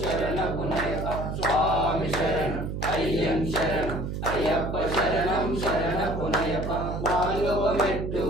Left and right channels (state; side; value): noise; right; hum, 4 dB below the sound